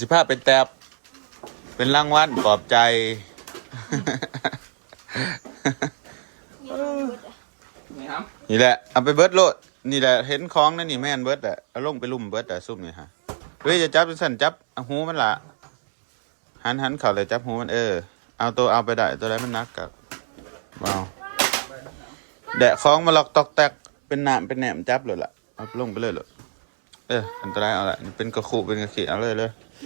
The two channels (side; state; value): left; silent; 64 dB below the other